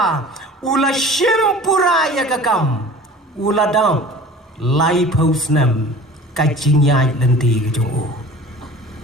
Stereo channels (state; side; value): normal; both; correlation 0.42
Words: ula shimpura ya kakam ula dam lai pau snem kajinyai lenti kejong u.